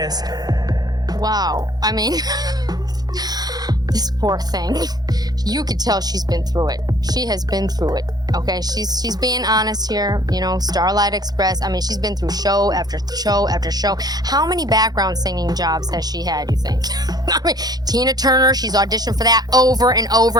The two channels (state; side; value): late; left; 0.19 ms